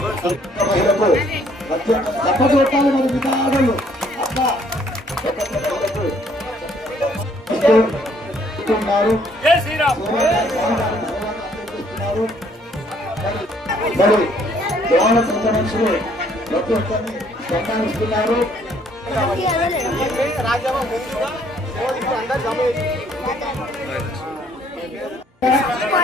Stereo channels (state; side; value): normal; both; correlation 0.64